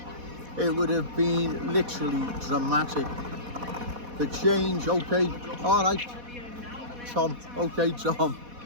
It would have been literally dramatic. The change, okay, all right, Tom, okay, Tom.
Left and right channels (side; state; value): left; late; 4.1 ms